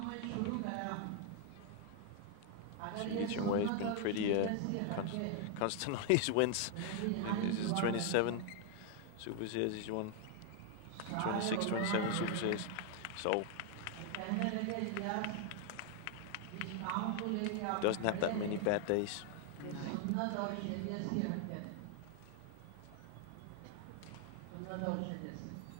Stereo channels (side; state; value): both; different; correlation 0.00